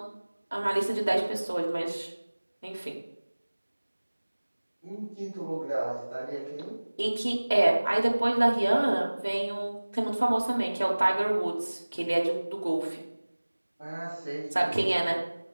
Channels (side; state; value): both; inverted; correlation -1.00